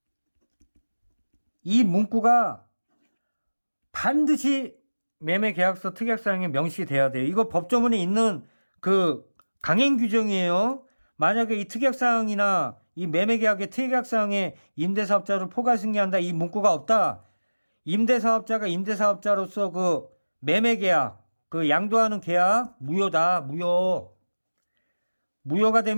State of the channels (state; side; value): inverted; both; correlation -1.00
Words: 이 문구가 반드시 매매계약서 특약사항에 명시가 돼야 돼요. 이거 법조문에 있는 그 강행 규정이에요. 만약에 이 특약사항이나 이 매매계약의 특약사항에 임대사업자를 포괄 승계한다, 이 문구가 없다. 임대사업자가 임대사업자로서 그 매매계약, 그 양도하는 계약 무효다. 무효가